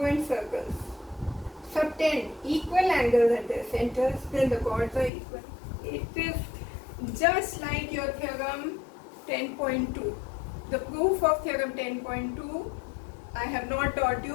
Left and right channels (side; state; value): right; drops out; at 5.1 s